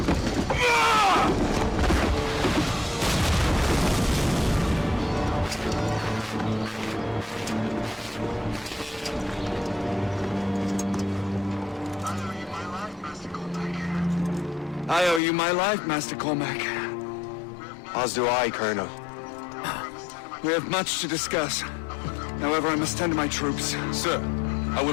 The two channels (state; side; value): drops out; right; at 15.2 s